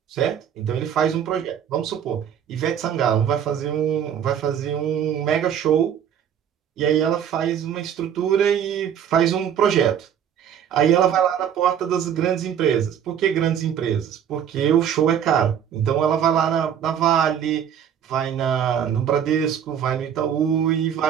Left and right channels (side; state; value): left; quieter; 8.9 dB